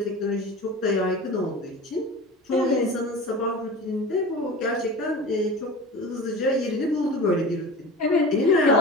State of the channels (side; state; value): both; normal; correlation 0.34